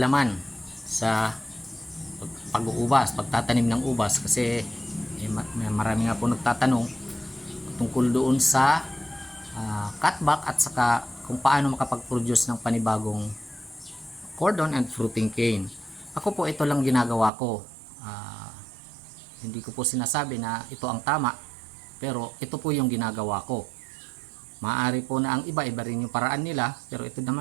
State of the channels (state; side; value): drops out; left; at 17.3 s